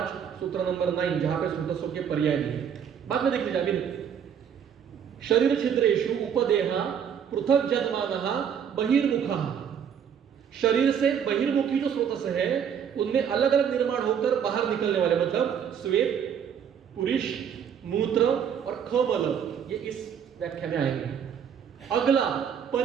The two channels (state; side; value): quieter; left; 8.0 dB